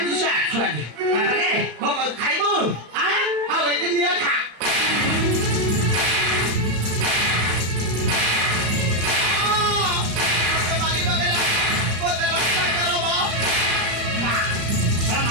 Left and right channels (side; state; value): left; late; 35 ms